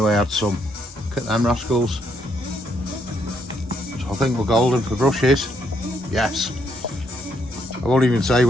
I had some. Look at them rascals. So I think we're golden for brushes. Yes. I won't even say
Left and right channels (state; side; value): normal; both; correlation 0.74